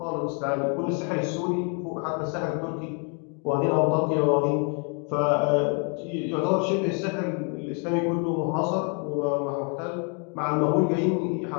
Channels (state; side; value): quieter; right; 37.9 dB